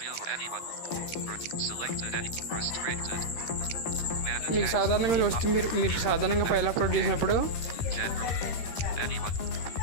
మీకు సాధారణంగా వస్తే మీరు సాధారణంగా ఫైల్ అప్లోడ్ చేసినప్పుడు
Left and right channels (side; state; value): right; late; 12 ms